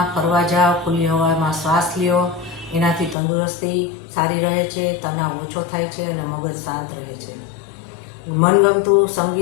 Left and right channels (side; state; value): right; drops out; at 3.2 s